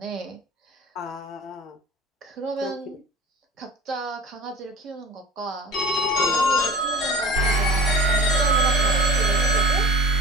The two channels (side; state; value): both; normal; correlation 0.41